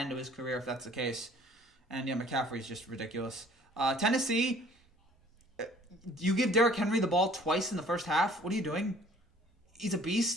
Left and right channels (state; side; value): normal; both; correlation 0.54